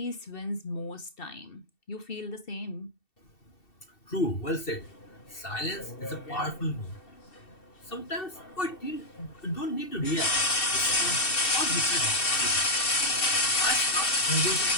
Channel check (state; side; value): late; right; 2.7 ms